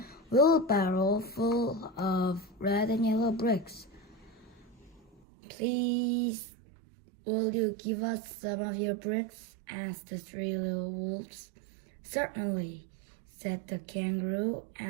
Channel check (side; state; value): left; drops out; at 5.2 s